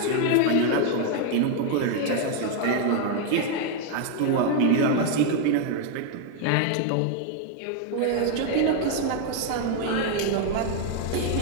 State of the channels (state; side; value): different; both; correlation 0.00